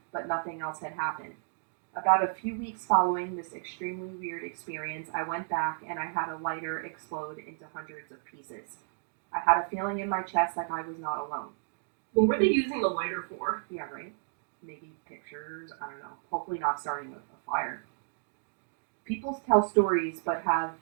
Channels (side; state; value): left; silent; digital silence